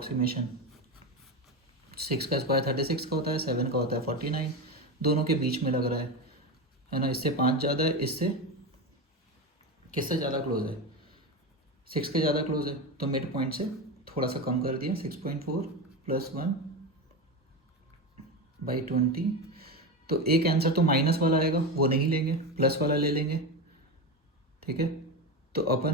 6 का स्क्वायर 36 का होता है, 7 का होता है 49, दोनों के बीच में लग रहा है ना। इससे 5 ज़्यादा है, इससे किससे ज़्यादा क्लोज है, 6 के ज़्यादा क्लोज है, तो मिड पॉइंट से थोड़ा सा कम कर दिया, 6.4 + 1/20। तो एक आंसर तो माइनस वाला आएगा, वो नहीं लेंगे, प्लस वाला ले लेंगे। ठीक है, तो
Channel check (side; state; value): both; normal; correlation 0.18